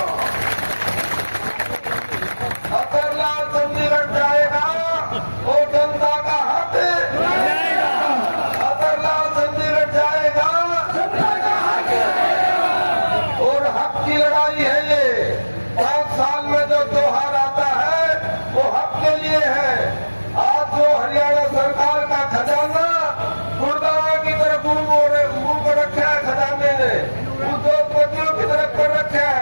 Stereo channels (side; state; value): both; inverted; correlation -1.00